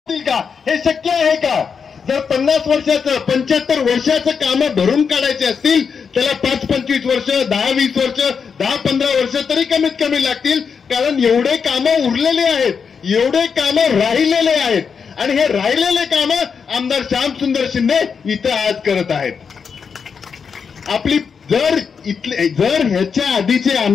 का? हे शक्य आहे का? जर 50 वर्षाचं 75 वर्षाचं काम भरून काढायचे असतील त्याला 5-25 वर्ष 10-20 वर्ष 10-15 वर्ष तरी कमीत कमी लागतील. कारण एवढे कामं उरलेले आहेत, एवढे कामं राहिलेले आहेत आणि हे राहिलेले कामं आमदार श्यामसुंदर शिंदे इथं आज करत आहेत. आपली जर ह्याच्या आधीचे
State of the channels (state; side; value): quieter; right; 6.1 dB